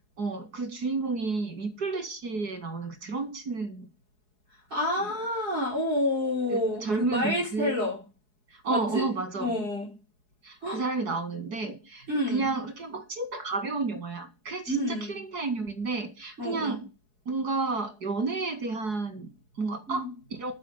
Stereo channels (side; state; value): left; late; 4.7 ms